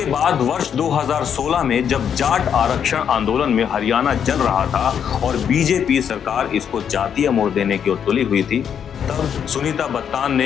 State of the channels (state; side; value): quieter; right; 8.2 dB